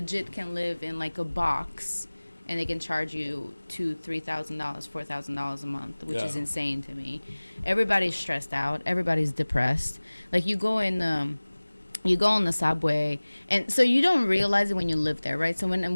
can live in like a box and they can charge you $2,000, $3,000, $4,000 a month, which is insane to me. Everybody's stressed out. Everybody's depressed. Like you go on the subway, and so you don't realize it when you live there, right? So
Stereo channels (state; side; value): inverted; both; correlation -1.00